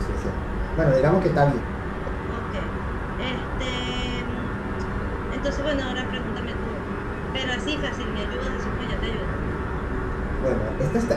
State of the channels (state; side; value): identical; both; correlation 1.00